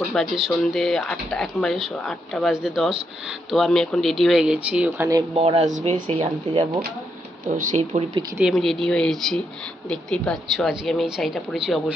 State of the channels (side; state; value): both; normal; correlation 0.79